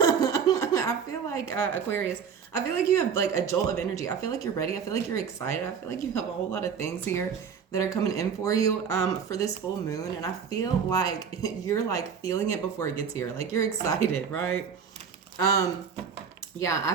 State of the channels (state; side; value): quieter; left; 6.8 dB